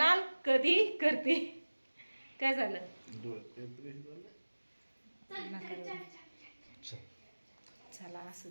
कधी करते. काय झालं? चला असू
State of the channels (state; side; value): inverted; both; correlation -1.00